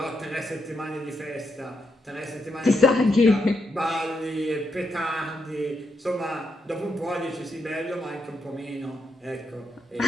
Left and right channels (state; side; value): normal; both; correlation 0.81